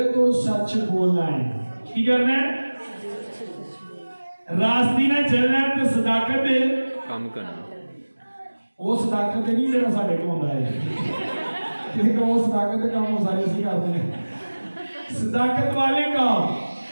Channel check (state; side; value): inverted; both; correlation -1.00